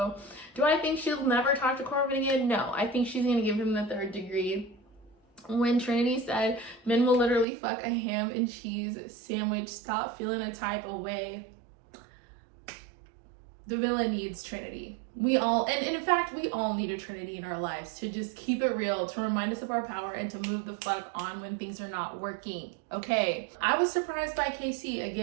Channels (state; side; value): drops out; left; at 7.5 s